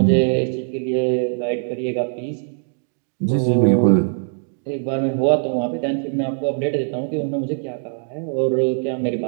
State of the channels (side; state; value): left; silent; digital silence